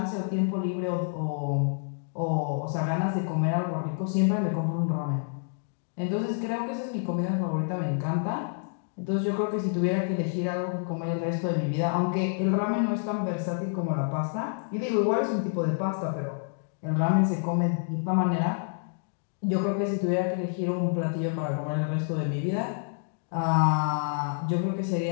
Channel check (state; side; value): silent; right; digital silence